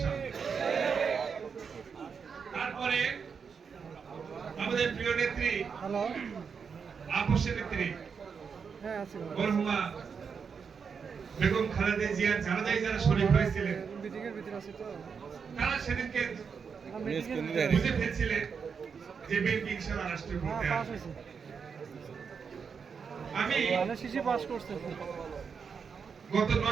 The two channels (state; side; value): quieter; left; 6.1 dB